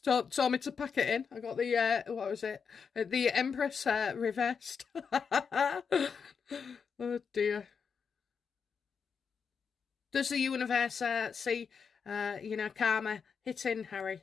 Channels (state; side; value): quieter; right; 6.2 dB